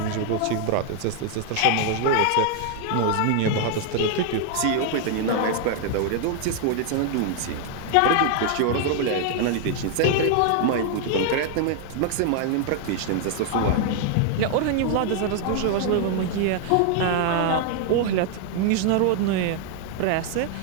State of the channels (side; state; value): both; different; correlation 0.00